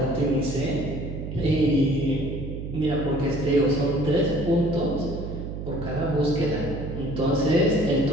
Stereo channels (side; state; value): right; noise; hum, 7 dB below the sound